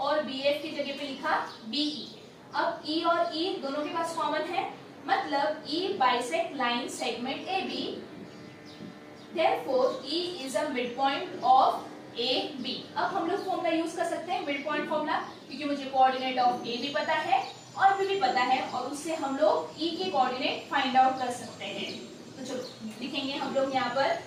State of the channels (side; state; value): both; identical; correlation 1.00